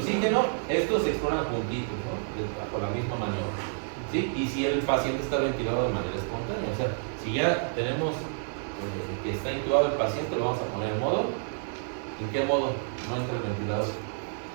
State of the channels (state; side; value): silent; left; 58 dB below the other